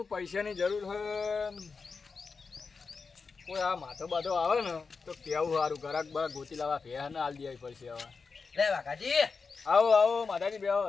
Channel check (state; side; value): quieter; right; 4.8 dB